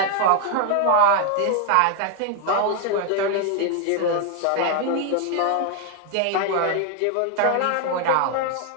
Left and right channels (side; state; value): both; different; correlation 0.00